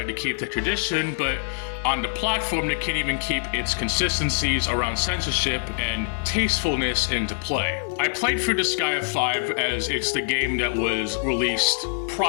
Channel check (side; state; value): right; silent; digital silence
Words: to keep the tradition, but on the platform they can't even keep its consistencies around censorship and tastefulness into play. I played through Disgaea 5 as it's the game that was released